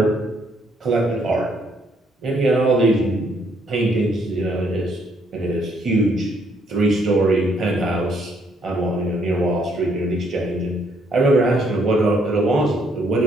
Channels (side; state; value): both; normal; correlation 0.70